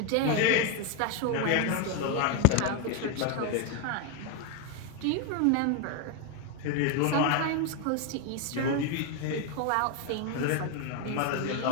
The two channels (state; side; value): different; both; correlation 0.01